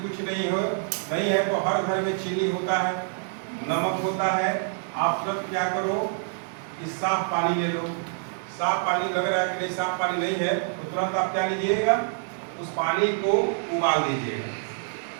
कुछ नहीं है तो हर घर में चीनी होता है, नमक होता है। आप तुरंत क्या करो कि साफ पानी ले लो। साफ पानी लग रहा है कि नहीं, साफ पानी नहीं है तो तुरंत आप क्या लीजिएगा, उस पानी को उबाल दीजिएगा।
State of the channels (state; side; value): silent; left; 61 dB below the other